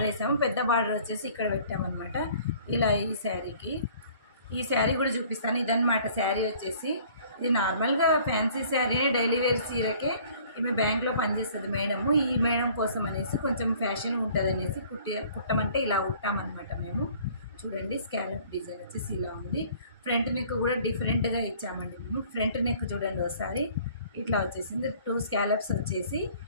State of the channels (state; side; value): inverted; both; correlation -0.54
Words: వేసాము. పెద్ద బార్డర్ వచ్చేసి ఇక్కడ పెట్టామన్నమాట. ఇలా ఈ శారీ కూడా చూపిస్తాను. ఇదన్నమాట శారీ వచ్చేసి. ఇది నార్మల్గా ఫ్యాన్సీ శారీని డైలీ వేర్ చీరకే ఈమె బ్యాంక్లో పనిచేస్తుంది మేడము. ఈ మేడం కోసం అనేసి కొంచెం ఫ్యాషన్ ఉంటుంది అనేసి కుట్టమంటే ఇలా కుట్టామన్నమాట మేము. చూడండి స్కాలప్ డిజైన్ వచ్చేసి ఇలా ఉంది. ఫ్రంట్ నెక్ కూడా డిఫరెంట్గా ఇచ్చామండి మేము. ఫ్రంట్ నెక్ చూడండి ఒకసారి ఇట్లా వచ్చేసింది. 2 స్కాలప్స్ వచ్చేసి